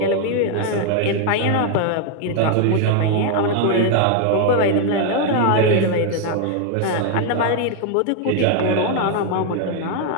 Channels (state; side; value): different; both; correlation 0.00